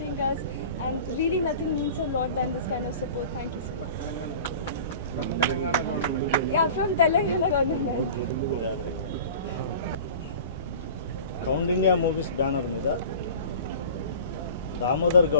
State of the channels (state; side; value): inverted; both; correlation -0.41